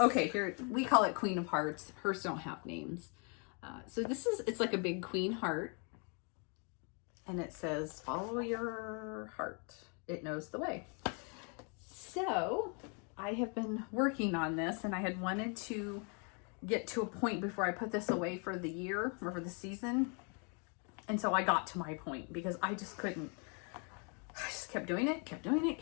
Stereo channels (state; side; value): quieter; right; 37.2 dB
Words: here, we call it Queen of Hearts. Hers don't have names. So this is, it's like a big queen heart. And it says, follow your heart. It knows the way. So I have been working on this, and I had wanted to get to a point before I put this away for the year or for the season. And so I got to my point because I just couldn't. I just kept doing it, kept doing it,